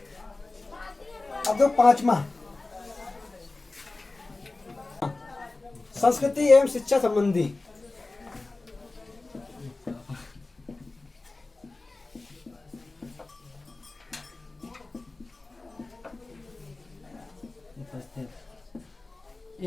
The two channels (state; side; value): quieter; right; 3.3 dB